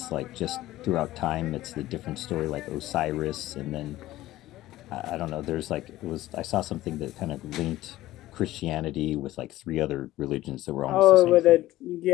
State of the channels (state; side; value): quieter; right; 15.9 dB